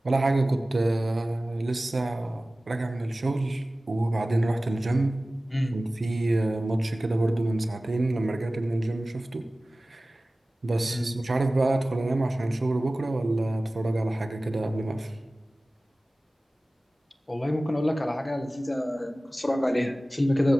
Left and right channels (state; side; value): normal; both; correlation 0.97